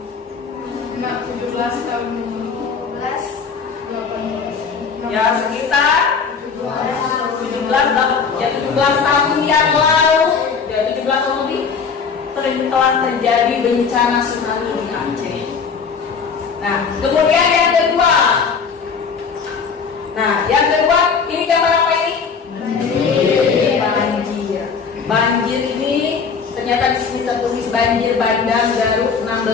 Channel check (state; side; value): quieter; right; 5.8 dB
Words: 17 tahun. Ya sekitar 17 tahun yang lalu, ya 17 tahun lebih telah terjadi bencana tsunami di Aceh. Nah, kemudian yang kedua. Nah, yang kedua ini gambar apa ini? Banjir. Banjir ini ternyata di sini tertulis banjir bandang Garut